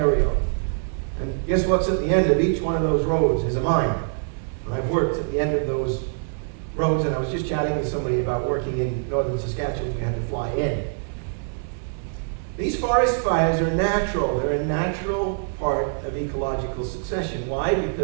And guess what's at the end of each one of those roads is a mine. And I've worked at the end of those roads, and I was just chatting with somebody about working in northern Saskatchewan. We had to fly in. These forest fires are natural. They're a natural part of ecological succession. Why?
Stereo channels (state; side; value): silent; left; digital silence